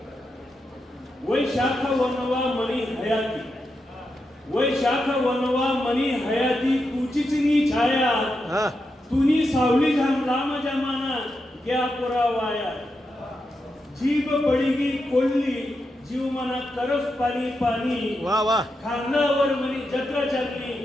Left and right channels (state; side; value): normal; both; correlation 0.86